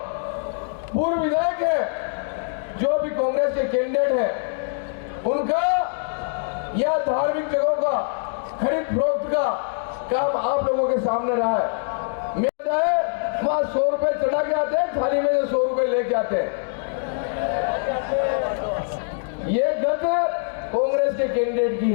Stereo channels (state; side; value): silent; right; digital silence